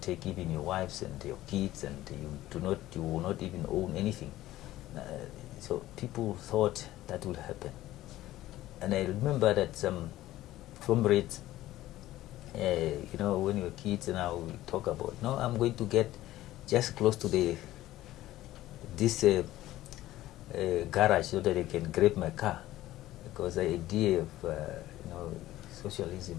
even your wives and your kids, and you will not even own anything. So people thought that would happen. And I remember that some comrades, when you're kids now, we talk about, no, I'm going to get just close to this garage so that I can grab my car, because the idea of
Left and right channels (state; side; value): quieter; right; 15.3 dB